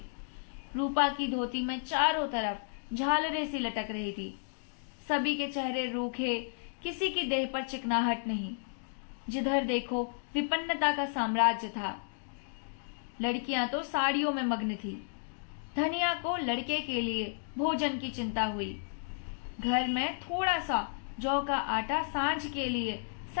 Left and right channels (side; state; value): right; silent; digital silence